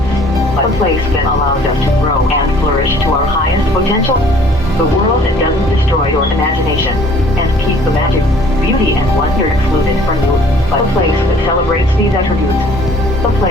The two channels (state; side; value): normal; both; correlation 0.55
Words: but a place that allows us to grow and flourish to our highest potential. The world that doesn't destroy your imagination and keep the magic, beauty, and wonder excluded from you, but a place that celebrates these attributes. A